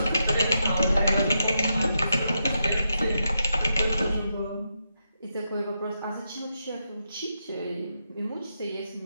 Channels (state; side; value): inverted; both; correlation -0.84